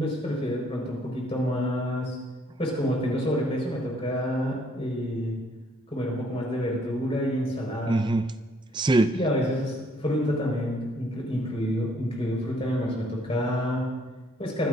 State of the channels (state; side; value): normal; both; correlation 0.66